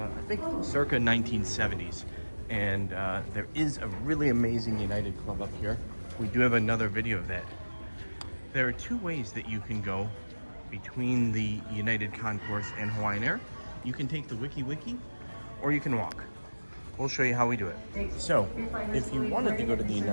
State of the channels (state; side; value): inverted; both; correlation -1.00